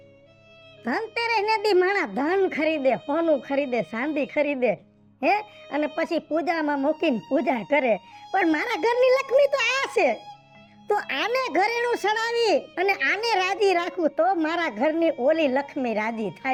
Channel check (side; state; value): both; identical; correlation 1.00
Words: ધનતેરસ ને દી માણા ધન ખરીદે, સોનું ખરીદે, ચાંદી ખરીદે હે, અને પછી પૂજામાં મૂકીને પૂજા કરે. પણ મારા ઘરની લક્ષ્મી તો આ છે, તો આને ઘરેણું સડાવી અને આને રાજી રાખું તો મારા ઘરની ઓલી લક્ષ્મી રાજી